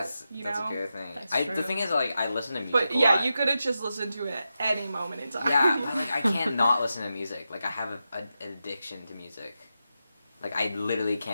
it? a good thing. That's The true. thing is, like, I listen to music. But a yeah, lot. you could have just listened to it at any moment in time. Yeah, but like I can't not listen to music. Like I have an addiction to music. Like I literally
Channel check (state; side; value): inverted; both; correlation -0.89